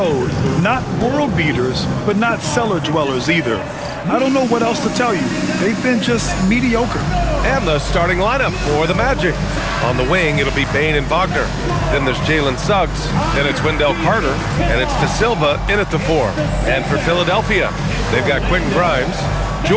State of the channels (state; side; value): identical; both; correlation 1.00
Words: Not world beaters, but not cellar dwellers either. I don't know what else to tell you. They've been just mediocre. And the starting lineup for the Magic. On the wing, it'll be Bane and Wagner. Then there's Jalen Suggs. Then it's Wendell Carter. And it's De Silva in at the 4. And for Philadelphia, they've got Quentin Grimes,